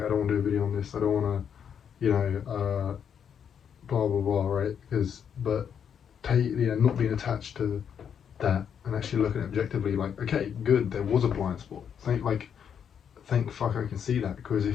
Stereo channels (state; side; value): quieter; right; 7.9 dB